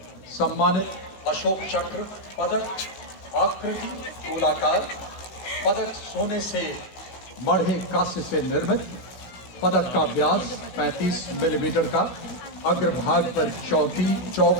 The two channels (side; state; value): right; late; 16 ms